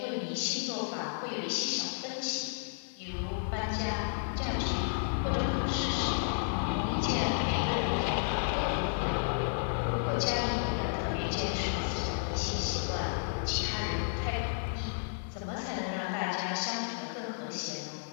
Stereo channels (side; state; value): right; silent; digital silence